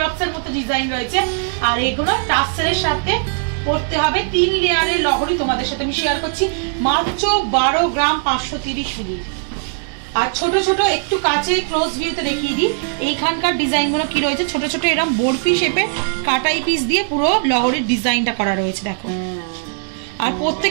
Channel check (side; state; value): left; silent; digital silence